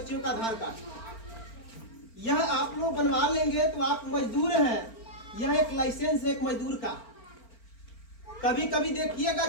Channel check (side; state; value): right; late; 4.4 ms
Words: का आधार कार्ड। यह आप लोग बनवा लेंगे तो आप मजदूर हैं। यह एक लाइसेंस है एक मजदूर का। कभी कभी देखिएगा